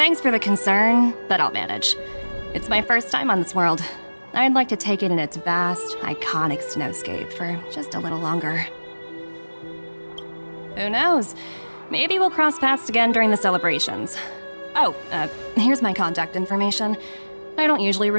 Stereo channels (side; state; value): both; inverted; correlation -1.00